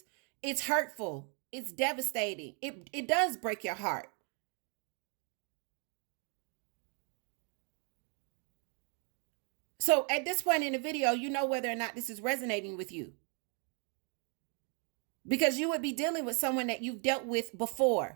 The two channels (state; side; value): quieter; left; 38.2 dB